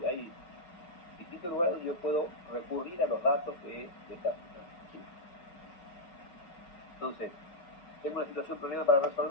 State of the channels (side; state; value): right; late; 5.7 ms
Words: y hay distintos lugares donde yo puedo recurrir a los datos de esta situación. ¿Sí? Entonces, tengo una situación, problema para